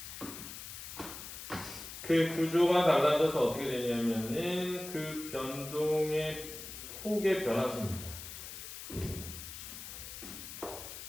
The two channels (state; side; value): noise; left; hiss, 10 dB below the sound